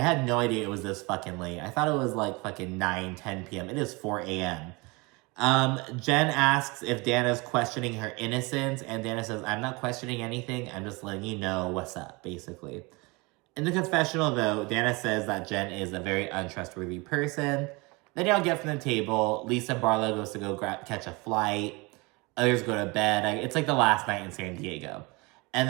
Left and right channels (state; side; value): quieter; left; 26.2 dB